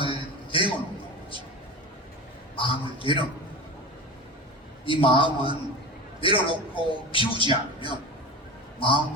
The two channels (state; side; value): normal; both; correlation 0.29